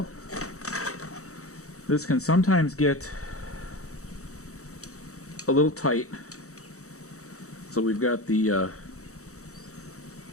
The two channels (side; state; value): right; late; 0.65 ms